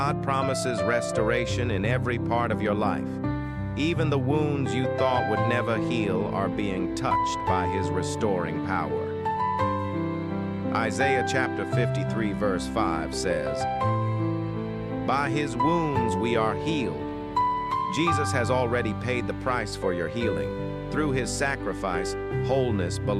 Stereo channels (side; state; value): both; identical; correlation 1.00